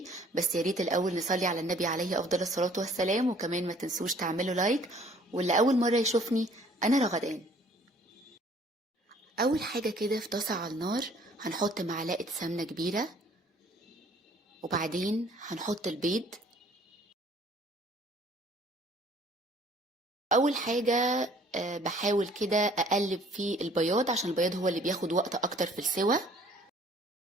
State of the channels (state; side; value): normal; both; correlation 0.57